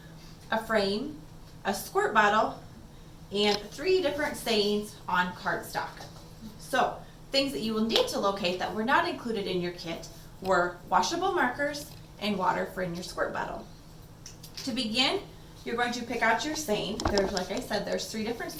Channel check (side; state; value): both; identical; correlation 1.00